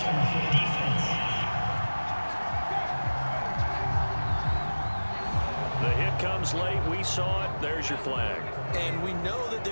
The hit comes late. We saw it. There's your flag. And we know that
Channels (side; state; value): both; inverted; correlation -1.00